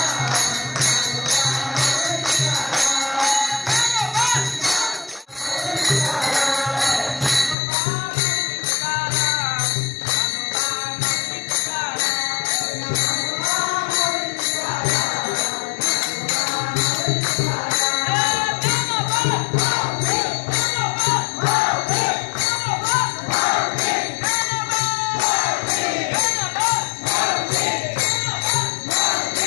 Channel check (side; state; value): right; drops out; at 7.6 s